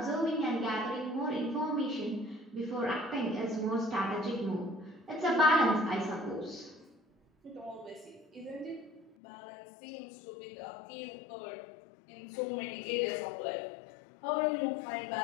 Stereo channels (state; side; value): drops out; right; at 9.2 s